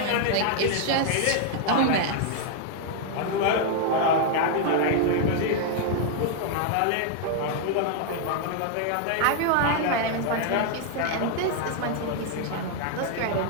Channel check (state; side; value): different; both; correlation 0.00